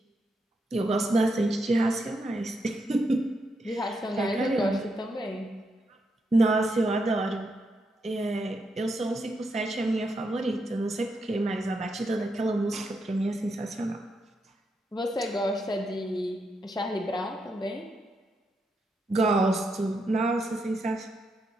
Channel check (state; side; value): normal; both; correlation 0.82